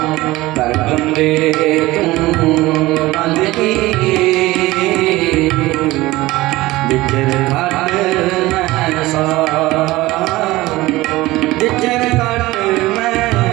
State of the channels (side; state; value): left; quieter; 18.9 dB